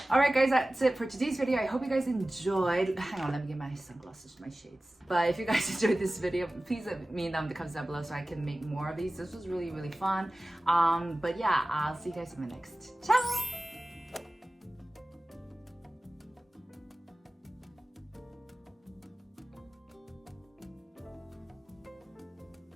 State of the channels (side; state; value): both; normal; correlation 0.96